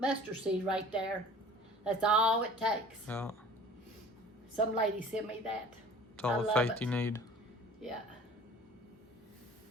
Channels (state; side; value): normal; both; correlation 0.46